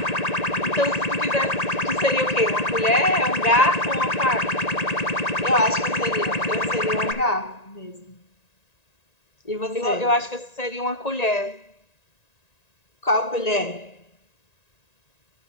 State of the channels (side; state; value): right; late; 1.9 ms